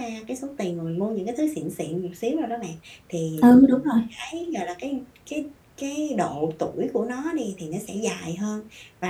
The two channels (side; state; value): both; identical; correlation 1.00